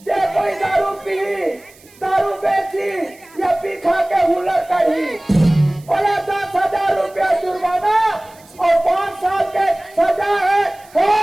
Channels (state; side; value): noise; right; hiss, 26 dB below the sound